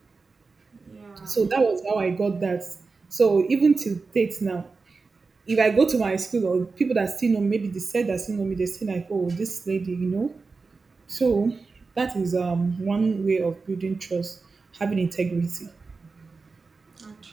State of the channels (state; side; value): quieter; left; 4.3 dB